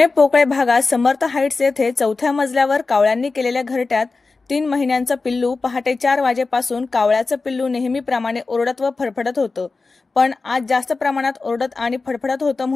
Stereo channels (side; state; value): right; quieter; 3.9 dB